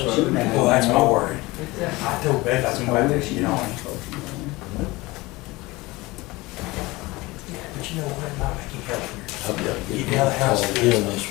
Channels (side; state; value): right; quieter; 21.6 dB